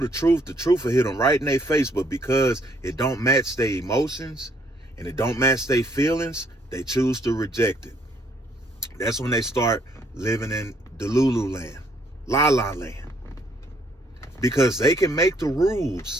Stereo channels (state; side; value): normal; both; correlation 0.68